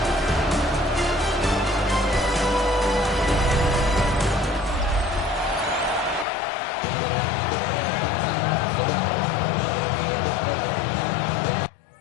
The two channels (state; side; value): drops out; right; at 6.2 s